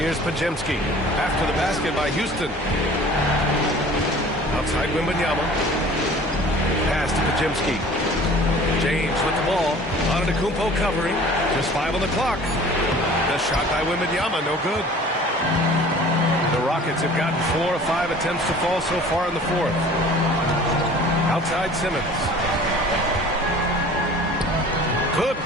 Podziemski. After the basket by Houston. Outside Wembanyama. Pass to Podziemski. James with the ball. Antetokounmpo covering. Just 5 on the clock. The shot by Wembanyama, no good. The Rockets have gotten 4 of 5 attempts to fall so far in the 4th. Outside Simmons. Good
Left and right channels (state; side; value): normal; both; correlation 0.46